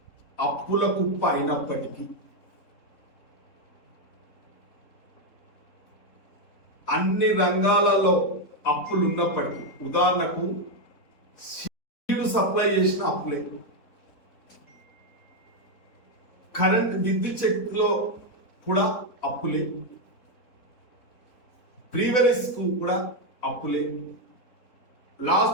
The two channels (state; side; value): late; right; 4.1 ms